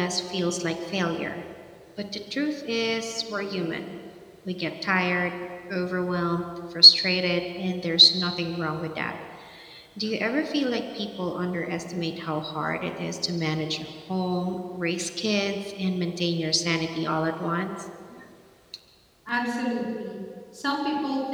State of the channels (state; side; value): identical; both; correlation 1.00